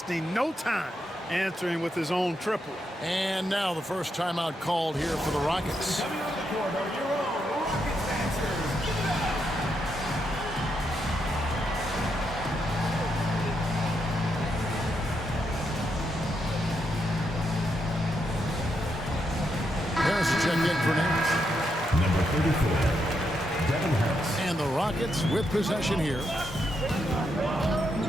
no time answering with his own triple. And now the first timeout called here for the Rockets. Check in for Nash. Number 34, Devin Harris. And the Rockets with possession here.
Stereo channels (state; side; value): normal; both; correlation 0.81